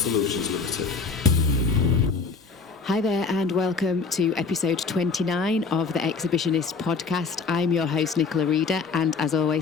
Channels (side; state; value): right; quieter; 4.7 dB